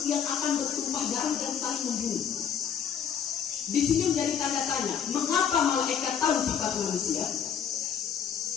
yang akan bertumpah darah dan saling membunuh? Di sini menjadi tanda tanya, mengapa malaikat tahu sifat manusia?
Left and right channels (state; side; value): quieter; right; 7.9 dB